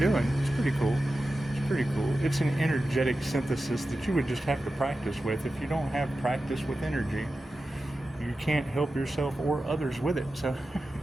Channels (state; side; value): normal; both; correlation 0.93